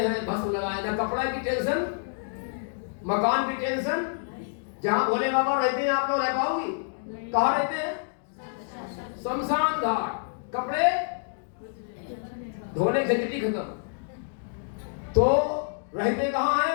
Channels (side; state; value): right; silent; digital silence